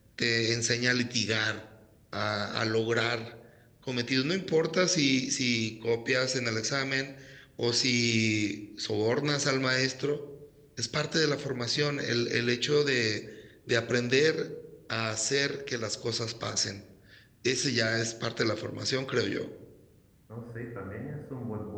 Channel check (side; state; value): both; identical; correlation 1.00